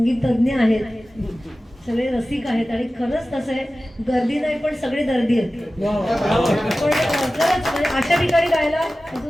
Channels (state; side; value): normal; both; correlation 0.96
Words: तज्ञ आहेत, सगळे रसिक आहेत आणि खरंच तसं आहे, गर्दी नाही पण सगळे दर्दी आहेत. पण खरंच म्हणजे अशा ठिकाणी गायला